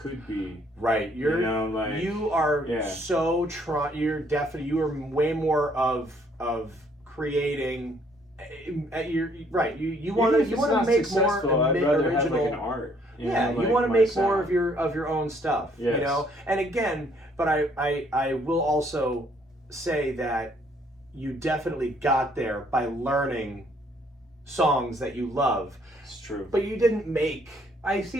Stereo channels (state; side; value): normal; both; correlation 0.65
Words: be? Right. You know, like You are yeah. so you're definitely you are way more of creating. You're right. You want to make more I'd rather original. have like an art. Yeah, know, you like want to my make more sound. of your own stuff. Yes. You know, and again, but I will also say that you definitely got there by learning songs that you love. It's true. But you didn't make. I see